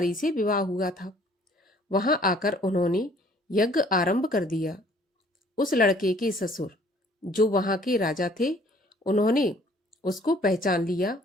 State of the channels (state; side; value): normal; both; correlation 0.58